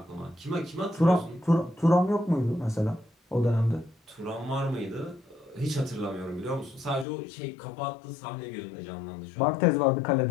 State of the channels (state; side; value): drops out; right; at 7.1 s